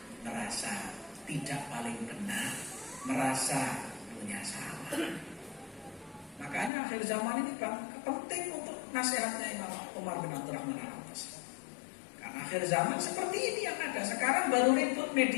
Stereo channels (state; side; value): drops out; right; at 6.7 s